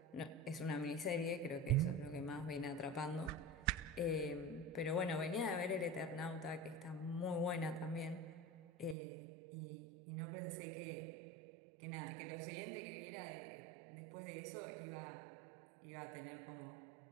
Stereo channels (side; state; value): left; drops out; at 9.0 s